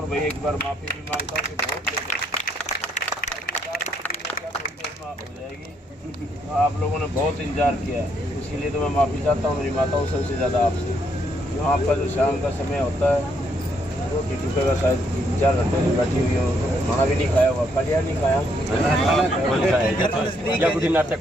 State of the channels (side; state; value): both; normal; correlation 0.73